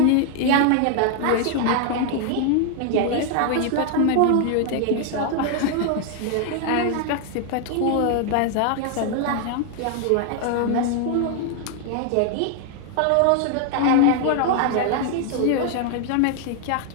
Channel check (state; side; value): different; both; correlation 0.00